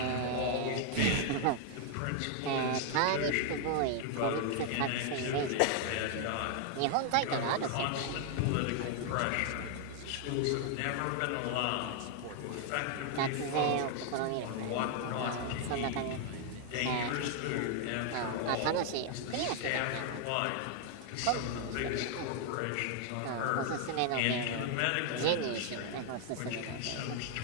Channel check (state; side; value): different; both; correlation 0.00